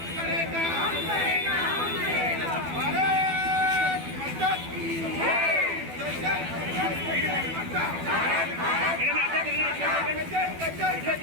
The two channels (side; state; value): left; late; 12 ms